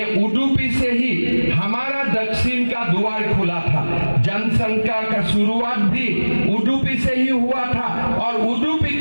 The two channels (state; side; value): inverted; both; correlation -1.00